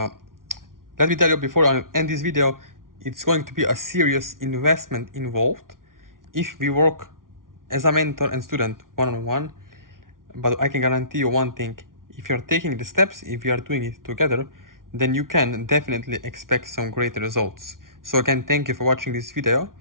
me tell you before I end this video, it's going to be a serious investment involved if we work as a mentor and student one-on-one. But I can guarantee you one thing: if you're taking the steps, if you are doing it together, then you can definitely expect some great results. So again, thank you for watching this video,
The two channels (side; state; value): left; late; 0.90 ms